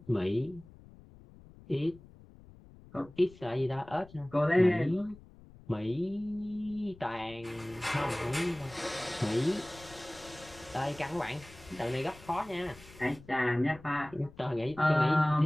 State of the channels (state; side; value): noise; left; rumble, 21 dB below the sound